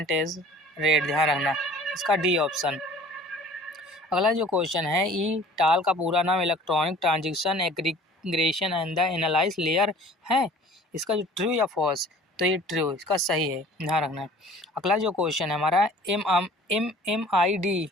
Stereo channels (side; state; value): both; normal; correlation 0.48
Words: रेट, ध्यान रखना, इसका डी ऑप्शन। अगला जो क्वेश्चन है टाल का पूरा नाम electronic transition aggregation and the analyse layer है, इसका जो ट्रू या फॉल्स, तो ये ट्रू, इसका सही है, ध्यान रखना। अगला जो क्वेश्चन है हमारा MMID